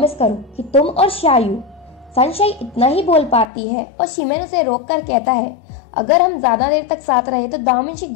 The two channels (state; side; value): drops out; right; at 3.5 s